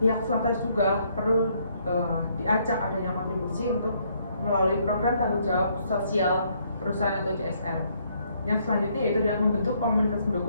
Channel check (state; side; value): inverted; both; correlation -0.69